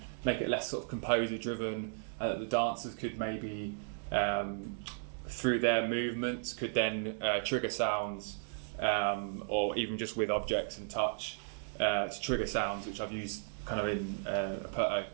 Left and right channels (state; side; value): silent; left; digital silence